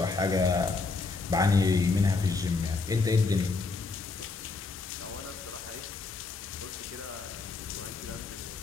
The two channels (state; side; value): quieter; right; 4.0 dB